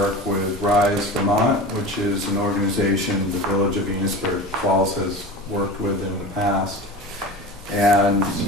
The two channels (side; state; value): both; normal; correlation 0.32